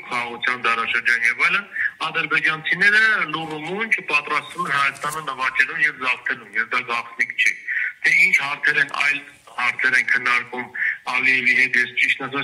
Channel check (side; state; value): both; identical; correlation 1.00